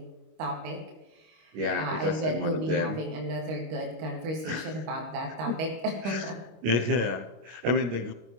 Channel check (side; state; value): left; late; 25 ms